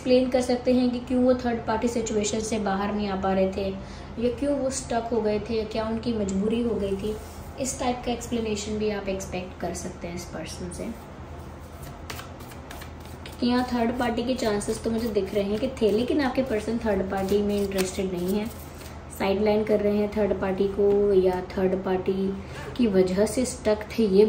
कर सकते हैं कि क्यों वो थर्ड पार्टी सिचुएशन से बाहर नहीं आ पा रहे थे, या क्यों वो स्टक हो गए थे, या क्या उनकी मजबूरी हो गई थी। इस टाइप का एक्सप्लेनेशन भी आप एक्सपेक्ट कर सकते हैं इस पर्सन से। यहाँ थर्ड पार्टी के चांसेस तो मुझे दिख रहे हैं कि थे, लेकिन आपके पर्सन थर्ड पार्टी में इंटरेस्टेड नहीं है, साइडलाइन कर रहे हैं थर्ड पार्टी को, या थर्ड पार्टी की वजह से स्टक थे, ये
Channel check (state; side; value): identical; both; correlation 1.00